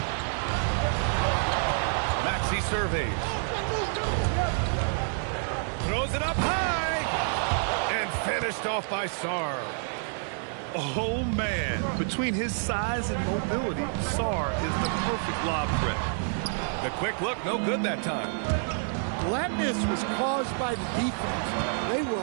Maxey surveys. Throws it up high. And finished off by Sarr. Oh, man. Between his size and mobility, Sarr is the perfect lob threat. The quick look, no good that time. Well, that miss was caused by the defense. They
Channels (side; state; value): left; silent; 59 dB below the other